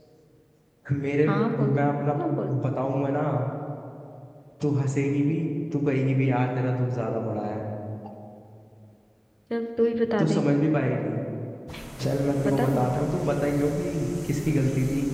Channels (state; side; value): identical; both; correlation 1.00